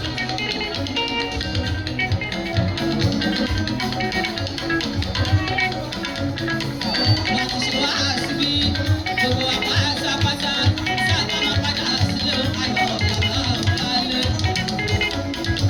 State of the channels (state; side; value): identical; both; correlation 1.00